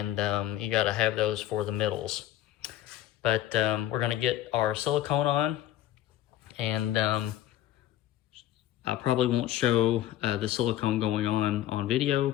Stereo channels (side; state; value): right; quieter; 13.4 dB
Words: you got to have those for the middles. But we're going to get our silicone on, and I probably won't show the silicone going on video.